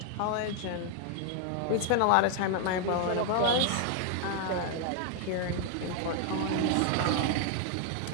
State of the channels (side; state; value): both; different; correlation 0.00